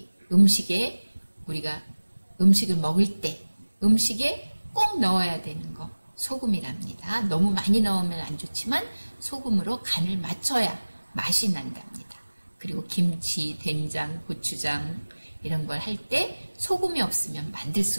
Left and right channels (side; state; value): both; inverted; correlation -1.00